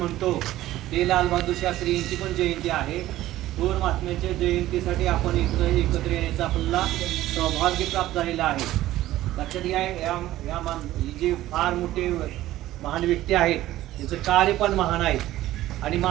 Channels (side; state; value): left; quieter; 15.0 dB